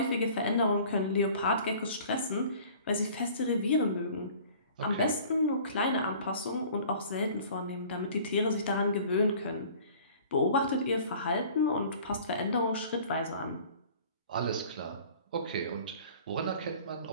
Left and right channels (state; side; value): inverted; both; correlation -0.48